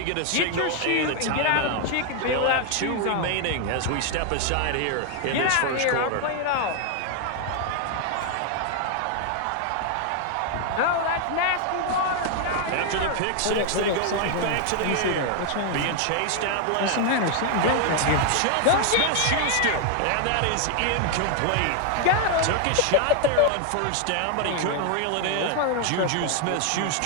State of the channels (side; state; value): both; different; correlation 0.00